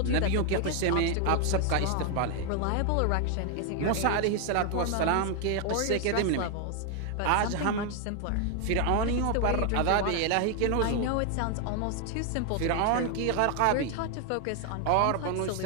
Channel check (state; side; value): different; both; correlation 0.00